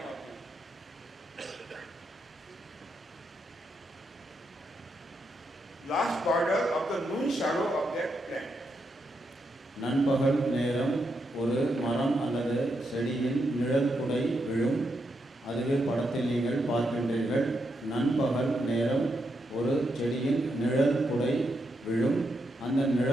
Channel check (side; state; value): both; normal; correlation 0.82